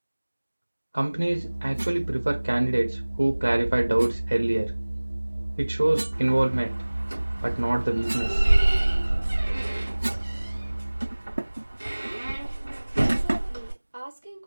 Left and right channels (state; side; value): inverted; both; correlation -1.00